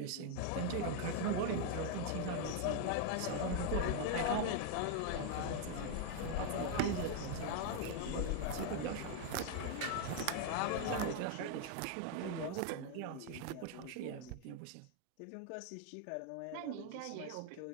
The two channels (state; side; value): different; both; correlation 0.01